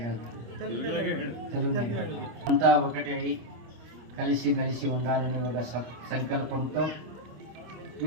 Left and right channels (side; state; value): left; late; 26 ms